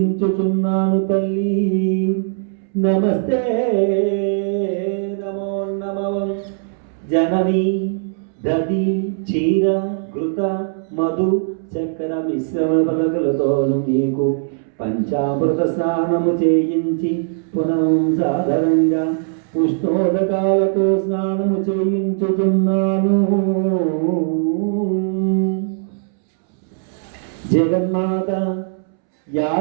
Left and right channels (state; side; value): silent; left; 66 dB below the other